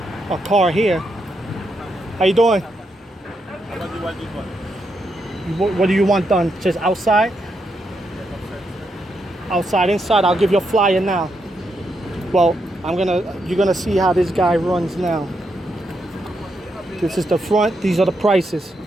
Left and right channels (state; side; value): normal; both; correlation 0.81